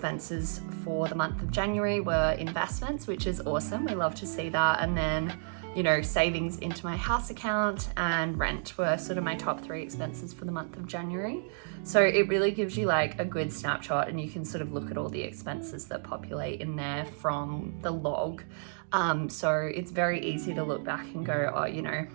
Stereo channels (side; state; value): left; silent; digital silence